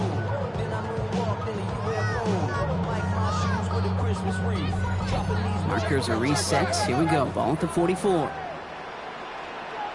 Markers are reset. Here we go. Ball at the 44.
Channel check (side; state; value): both; identical; correlation 1.00